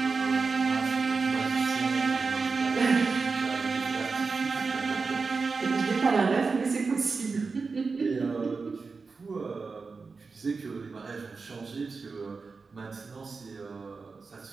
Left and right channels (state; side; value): quieter; left; 4.5 dB